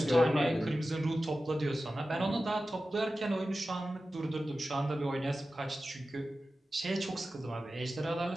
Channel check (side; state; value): both; normal; correlation 0.94